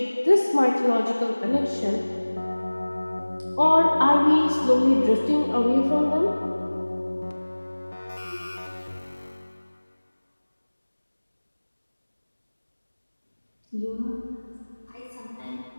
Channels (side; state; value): both; inverted; correlation -1.00